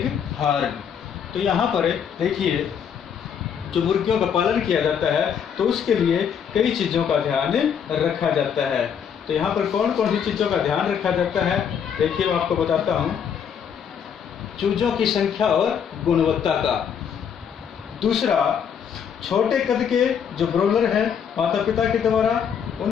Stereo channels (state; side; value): quieter; right; 7.8 dB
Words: horn. तो यहाँ पर देखिए, जो मुर्गियों का पालन किया जाता है तो उसके लिए कई चीज़ों का ध्यान रखा जाता है। तो यहाँ पर कौन कौन सी चीज़ों का ध्यान रखा जाता है देखिए, मैं आपको बताता हूँ। चूजों की संख्या और गुणवत्ता का। दूसरा, छोटे कद के जो ब्रोलर हैं माता पिता के द्वारा